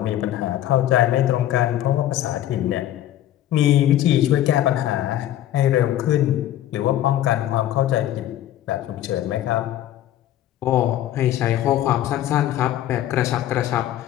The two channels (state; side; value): quieter; right; 12.5 dB